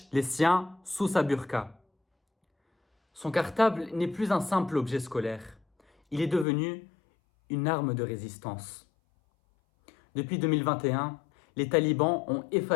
les siens sous sa burqa. Son cartable n'est plus un simple objet scolaire. Il est devenu une arme de résistance. Depuis 2021, les talibans ont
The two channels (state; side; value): drops out; right; at 6.5 s